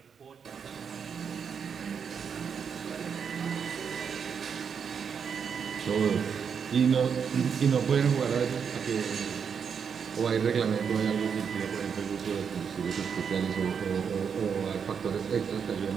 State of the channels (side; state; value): left; quieter; 6.8 dB